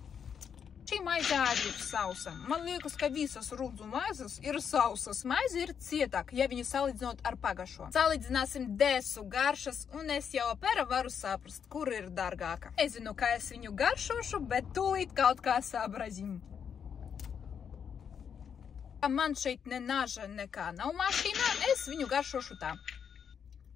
Šī maize arī ir sausa. Man liekas, ka visas rudzu maizes ir sausas. Maize ir cietāka, ja viņu salīdzinot ar pagašo. Salīdzināsim desu garšas, un es jau apēra varu saprast, kur ir dārgāka. Nezinu, kā es viņu garšošu, bet tūlīt kaut kā sabrazīm. Man šeit ne naža nekā nav mašīnā, es viņu garšošu tā.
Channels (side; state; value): right; quieter; 7.5 dB